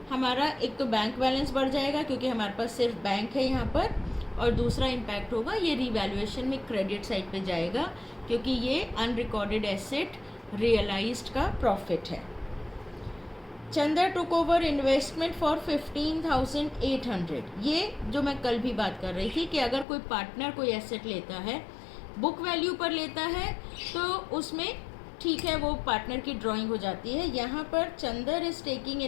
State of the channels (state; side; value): drops out; right; at 19.9 s